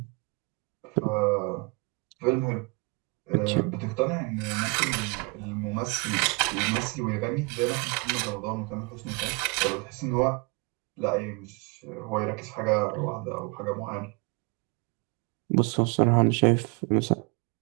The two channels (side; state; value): left; quieter; 30.3 dB